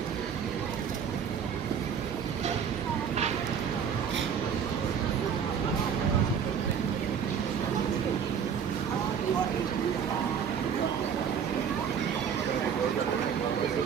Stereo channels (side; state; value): left; quieter; 7.4 dB